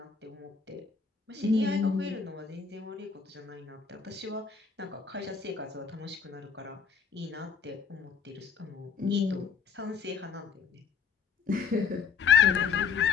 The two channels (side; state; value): right; quieter; 6.2 dB